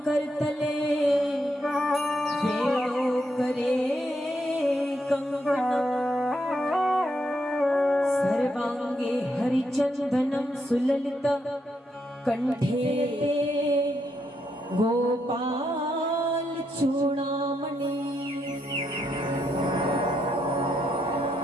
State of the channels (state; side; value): normal; both; correlation 0.79